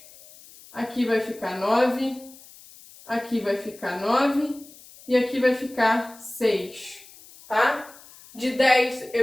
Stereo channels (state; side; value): noise; left; hiss, 22 dB below the sound